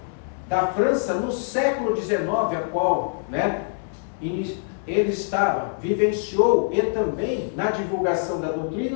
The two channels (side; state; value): right; silent; digital silence